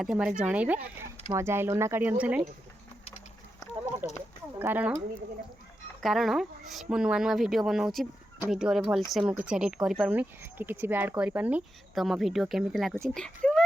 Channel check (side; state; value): both; normal; correlation 0.87